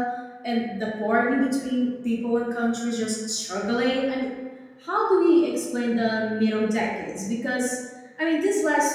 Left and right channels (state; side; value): identical; both; correlation 1.00